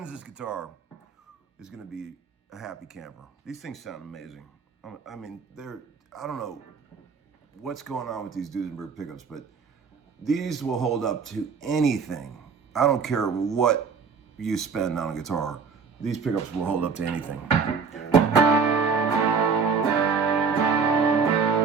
this guitar is going to be a happy camper. These things sound amazing. I mean, I don't know what's going on with these Duesenberg pickups, but these will hold up to anything. I don't care what you spend on a guitar. These pickups will hold up to anything.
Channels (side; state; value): left; quieter; 5.6 dB